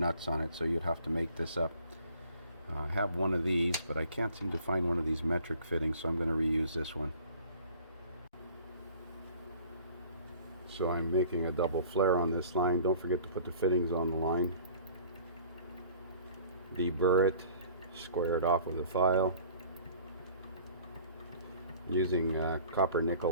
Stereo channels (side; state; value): both; inverted; correlation -0.50